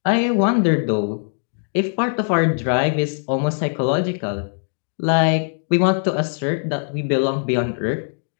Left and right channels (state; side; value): silent; right; digital silence